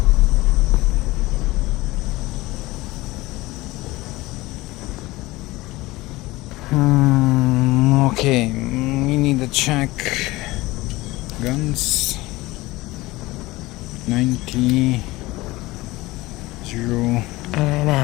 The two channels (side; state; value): right; quieter; 19.9 dB